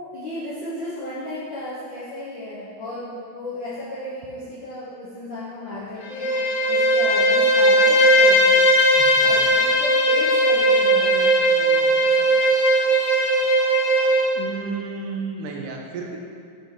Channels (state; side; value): normal; both; correlation 0.11